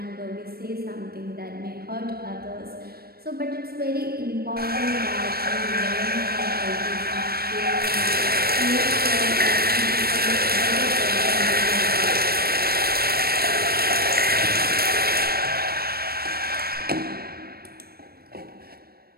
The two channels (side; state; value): left; late; 0.44 ms